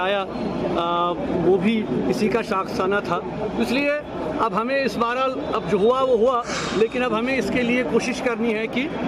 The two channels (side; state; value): both; identical; correlation 1.00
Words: وہ بھی اسی کا شاخسانہ تھا. اس لیے اب ہمیں اس بہرحال اب جو ہوا وہ ہوا، لیکن اب ہمیں اس کے لیے کوشش کرنی ہے کہ